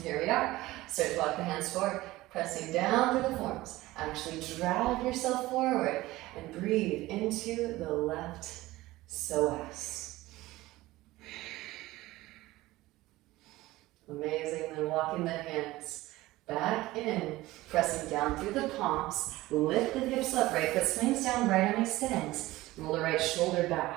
here we are. Start to walk the hands forward, pressing down through the forearms. Actually drag yourself forward and breathe into the left psoas. Amazing. Then walking the hands back in, pressing down through the palms. Lift the hips up, right foot swings down, right arm extends. Roll the right shoulder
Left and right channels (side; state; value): left; quieter; 18.1 dB